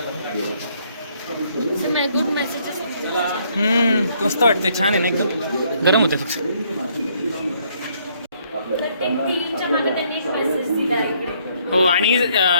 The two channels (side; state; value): both; inverted; correlation -0.67